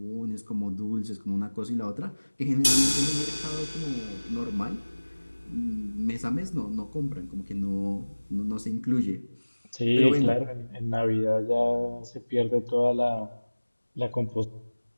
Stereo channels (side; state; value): both; inverted; correlation -1.00